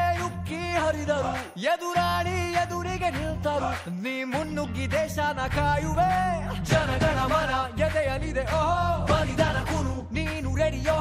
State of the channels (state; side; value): identical; both; correlation 1.00